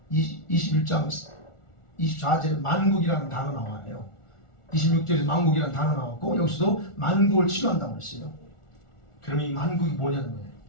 21장 24절에 만국이라는 단어 나와요. 26절에 만국이라는 단어 나왔고 여기서도 만국을 치료한다고 했어요. 그러면 이 만국이 뭐냐는 거예요.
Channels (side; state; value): right; late; 1.4 ms